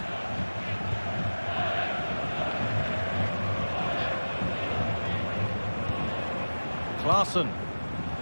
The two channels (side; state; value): both; inverted; correlation -1.00